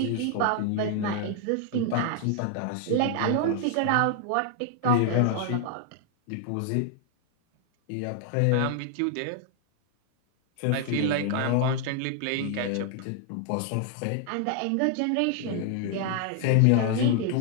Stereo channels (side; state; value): both; different; correlation 0.00